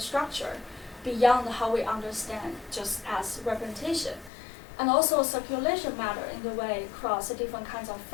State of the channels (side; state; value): right; drops out; at 4.3 s